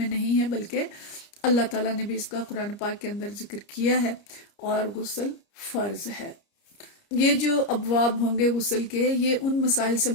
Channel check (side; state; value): right; late; 30 ms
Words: نہیں ہے، بلکہ اللہ تعالیٰ نے بھی اس کا قرآن پاک کے اندر ذکر کیا ہے، اور غسل فرض ہے۔ یہ جو ابواب ہوں گے غسل کے، یہ ان مسائل سے